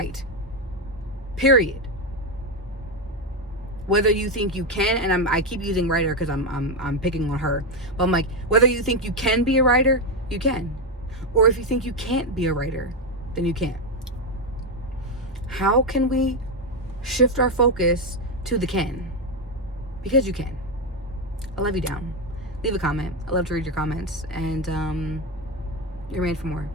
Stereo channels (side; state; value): both; normal; correlation 0.08